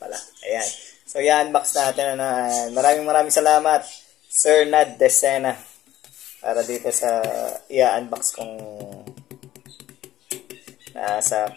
Ayan. So, i-unbox natin. Maraming salamat, Sir Nad Decena, para dito sa i-unbox kong nasa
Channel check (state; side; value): quieter; right; 13.7 dB